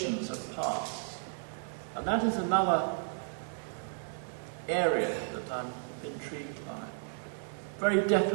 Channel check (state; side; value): silent; left; 55 dB below the other